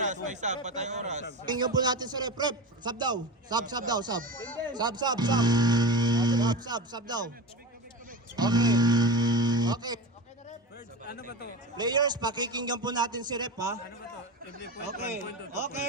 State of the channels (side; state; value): both; normal; correlation 0.26